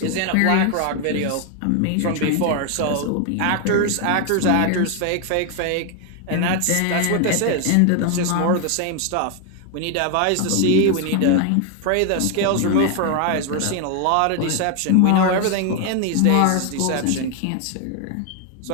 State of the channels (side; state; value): both; different; correlation 0.01